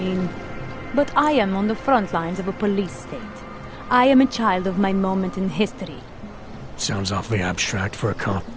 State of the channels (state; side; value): identical; both; correlation 1.00